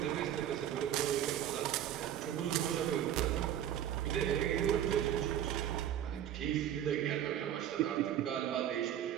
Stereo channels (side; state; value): left; quieter; 10.8 dB